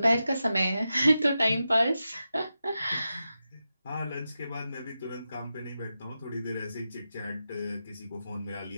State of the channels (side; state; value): both; inverted; correlation -0.90